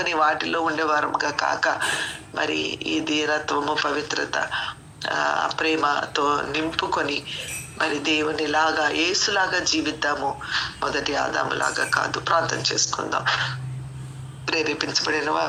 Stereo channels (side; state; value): both; identical; correlation 1.00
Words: వాటిలో ఉండేవారముగా కాక, మరి ఈ దీనత్వము, పవిత్రత, ప్రేమతో నింపుకొని మరి దేవునిలాగా, యేసులాగా జీవిద్దాము. మొదటి ఆదాములాగా కాదు. ప్రార్థన చేసుకుందాం. ప్రేరేపించబడిన